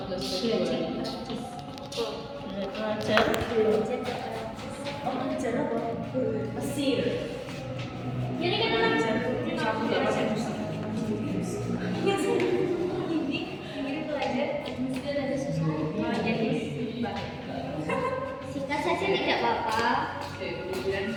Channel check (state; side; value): identical; both; correlation 1.00